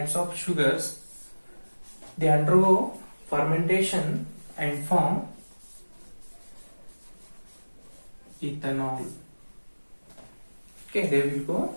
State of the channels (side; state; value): both; inverted; correlation -1.00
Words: of sugars. They undergo fermentation and form ethanol. Okay, they will go